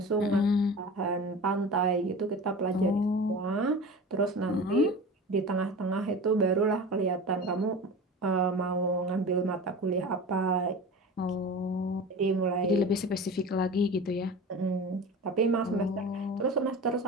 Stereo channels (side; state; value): both; normal; correlation 0.34